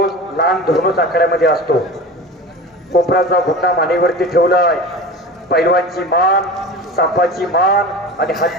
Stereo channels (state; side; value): normal; both; correlation 0.33